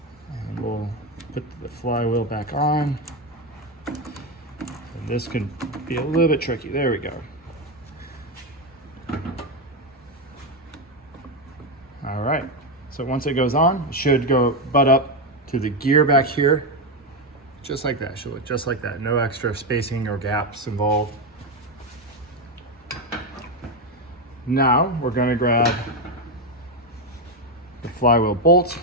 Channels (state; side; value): normal; both; correlation 0.09